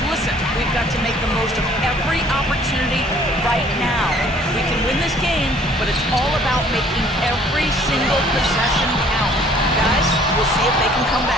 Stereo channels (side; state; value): both; normal; correlation 0.57